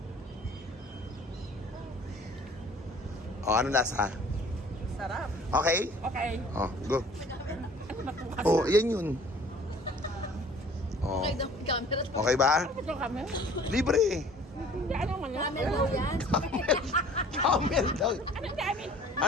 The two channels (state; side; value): normal; both; correlation 0.51